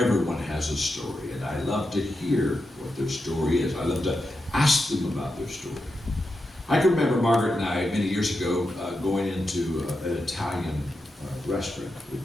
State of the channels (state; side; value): normal; both; correlation 0.88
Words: has a story, and I love to hear what their story is. I love to ask them about their story. I can remember Margaret and I, many years ago, going into an Italian restaurant